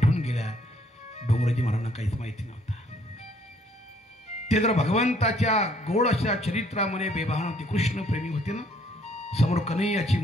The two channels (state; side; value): normal; both; correlation 0.64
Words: गेल्या, डोंगरेजी महाराजांना काहीच माहिती नव्हता. ते जर भगवंताच्या गोड अशा चरित्रामध्ये बेबहान होती, कृष्ण प्रेमी होते ना. समोर कन्हैयाची